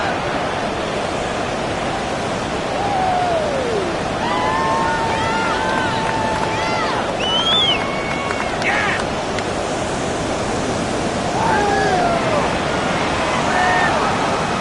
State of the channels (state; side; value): identical; both; correlation 1.00